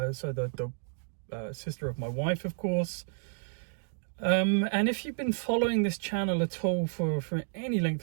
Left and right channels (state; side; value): silent; left; digital silence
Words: so the sister of my wife, of course. And if you've been following this channel at all for any